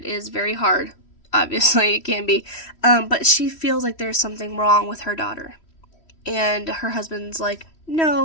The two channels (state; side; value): late; right; 3.1 ms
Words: is very hard. Obviously, it can be, but she feels like there's something wrong with her daughter. And her husband's like,